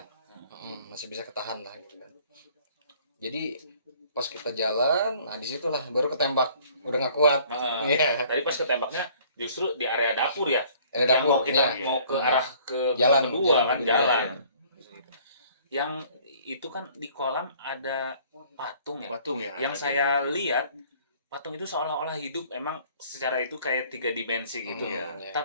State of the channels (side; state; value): both; inverted; correlation -0.56